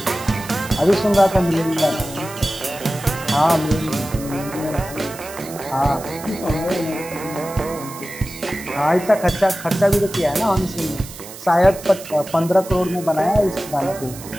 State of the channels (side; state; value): right; noise; hiss, 15 dB below the sound